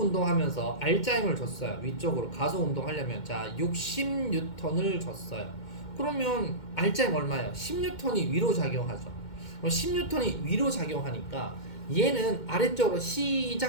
R자임을 줬어요. 위쪽으로 가속 운동하려면 자 60N을 줬어요. 그러면 R자임 얼마예요? 10N이 위로 작용하죠. 그럼 10N이 위로 작용하니까 얘는 아래쪽으로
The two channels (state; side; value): late; right; 2.1 ms